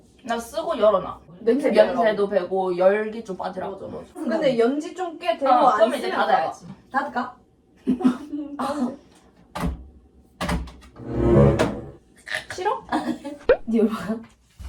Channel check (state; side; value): identical; both; correlation 1.00